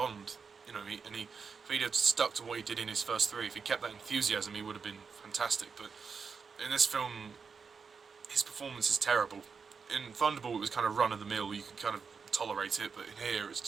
you know, if he'd have stuck to what he did in his first three, if he kept that enthusiasm, he would have been fantastic. But in this film, his performance is terrible. In Thunderball, it was kind of run-of-the-mill, you could kind of tolerate it, but in here, it's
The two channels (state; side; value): quieter; left; 5.6 dB